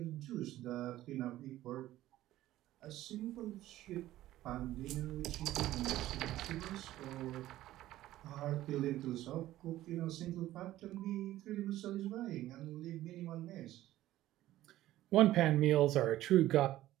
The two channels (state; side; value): quieter; left; 14.8 dB